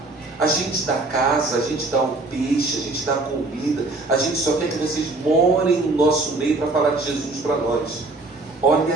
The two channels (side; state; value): left; quieter; 3.2 dB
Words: a gente dá casa, a gente dá um peixe, a gente dá comida, a gente só quer que vocês morem no nosso meio para falar de Jesus para nós.